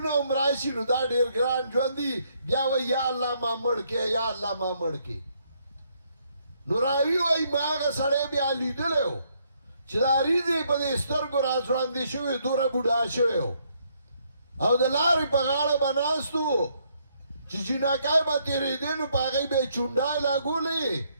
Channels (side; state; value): both; inverted; correlation -0.72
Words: عمرائشی نو دا دیر گران جواندی بیا وی یا اللہ ما مڑکے یا اللہ ما مڑکے نو راوی وی ما آغا سڑے بیا لیدلے ہو چدا ریزی پا دی سترگو راسواندی شوی دور بودا شوی ہو او دلاری پا غاڑا بناستو چی چیناکای با تیری دینو پا غی بے چونڈای لاغو لی